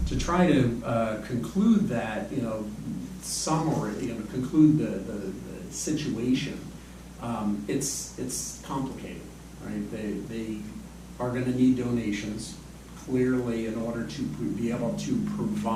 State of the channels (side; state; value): both; identical; correlation 1.00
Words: to try to conclude that, summary, conclude the situation, it's complicated, right? They are going to need donations, clearly, in order to be able to